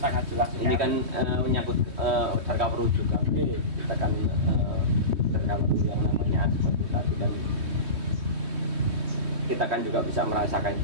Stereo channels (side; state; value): left; late; 3.2 ms